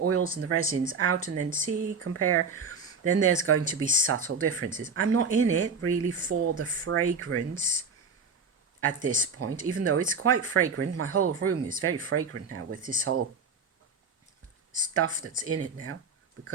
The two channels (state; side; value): quieter; left; 4.7 dB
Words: and the resins out and then compare. Then there's going to be subtle differences. I'm not in it really for the fragrance at this point, even though it's quite fragrant. My whole room is very fragrant now with this whole stuff that's in it now